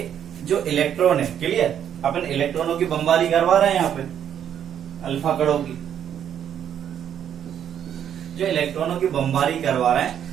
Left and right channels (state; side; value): quieter; left; 9.3 dB